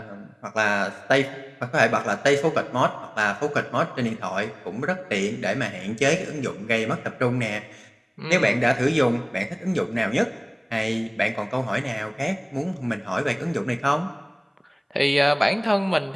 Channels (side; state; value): both; identical; correlation 1.00